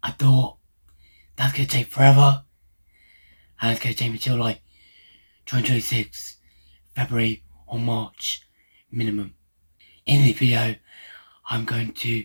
I thought that's going to take forever and it's going to take me till like 2026, February or March minimum. In this video, I'm going to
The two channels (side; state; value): both; inverted; correlation -1.00